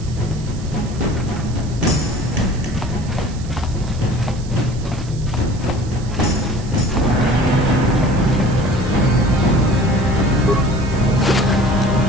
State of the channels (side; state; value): right; noise; hiss, 19 dB below the sound